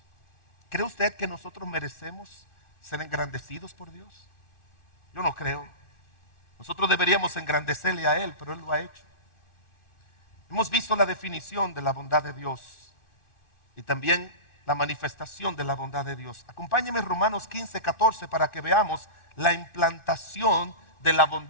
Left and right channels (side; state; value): right; late; 2.5 ms